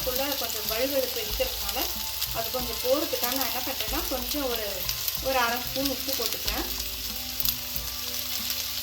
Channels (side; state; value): both; identical; correlation 1.00